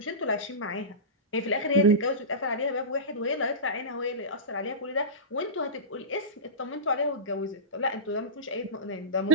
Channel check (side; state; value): both; normal; correlation -0.19